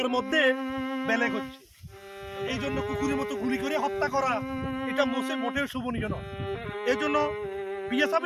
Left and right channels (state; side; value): identical; both; correlation 1.00